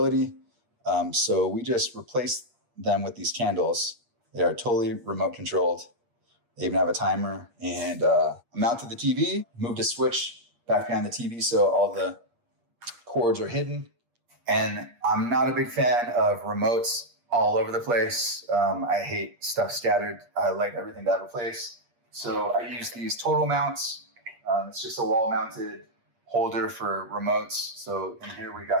So we just replaced them with these candles. They are totally remote controlled. They even have a timer, and mounted the TV, moved a switch back behind the TV so all the cords are hidden. And I'm not a big fan of remotes all over the place. I hate stuff scattered. I like everything to have a place. So I use these total mounts. It's just a wall mounted holder for remotes. So in here we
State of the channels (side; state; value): left; late; 8.5 ms